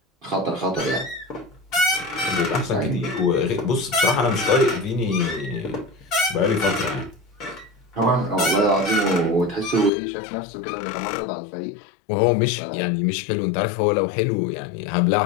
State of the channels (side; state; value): right; drops out; at 9.9 s